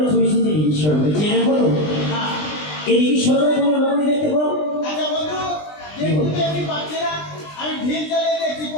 চলেছি যে ঈশ্বর চেনে বলো এই ঈশ্বরের কোনো রকমই দেখতে পাও আমি ঢিল চালিয়ে দেখছি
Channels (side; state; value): right; late; 20 ms